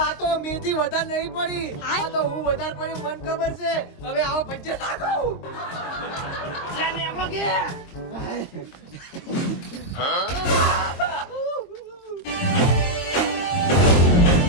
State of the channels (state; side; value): late; right; 22 ms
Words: આ તો મેથી વધારે નહીં પડી, આ તો હું વધારે પડી મન ખબર છે. હવે આવો ભજ્જે નાખો.